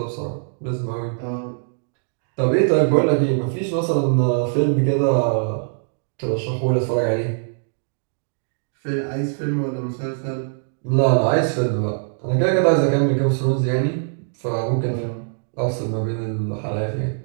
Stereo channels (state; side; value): silent; left; digital silence